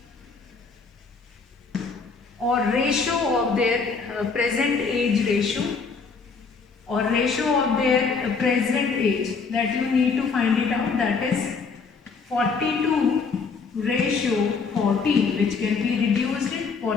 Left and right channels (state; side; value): quieter; right; 4.9 dB